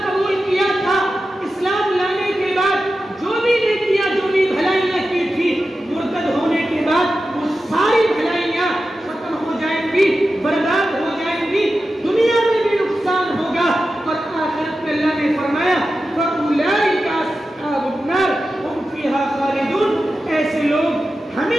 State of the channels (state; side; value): normal; both; correlation 0.92